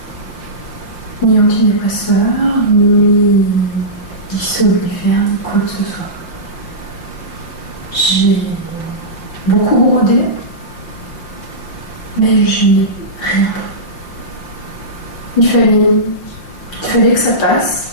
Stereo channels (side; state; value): right; late; 5.7 ms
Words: Ni antidépresseur, ni somnifère, ni quoi que ce soit. J'ai beaucoup brodé, mais je n'ai rien pris. Il fallait que ça